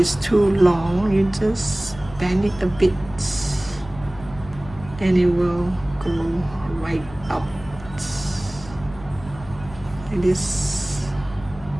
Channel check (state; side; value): noise; left; hum, 17 dB below the sound